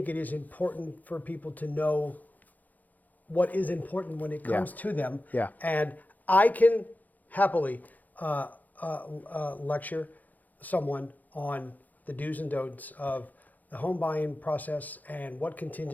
it is important for people to know what is important when it comes to them. Yeah. And I can happily lecture someone on the do's and don'ts of the home buying process and what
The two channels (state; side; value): late; right; 0.081 ms